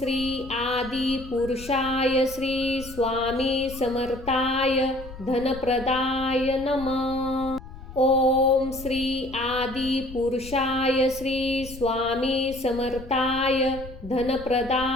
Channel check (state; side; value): noise; left; rumble, 15 dB below the sound